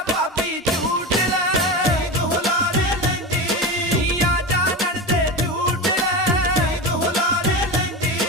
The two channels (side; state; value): both; normal; correlation 0.23